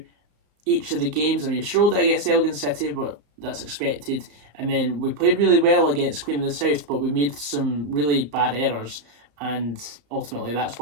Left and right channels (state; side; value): late; left; 34 ms